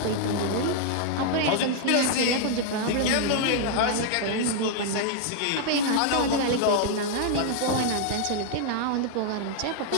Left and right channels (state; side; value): different; both; correlation -0.01